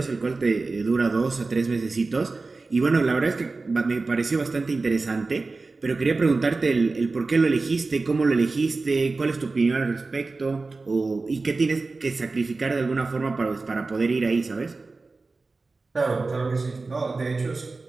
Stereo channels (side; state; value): left; quieter; 3.7 dB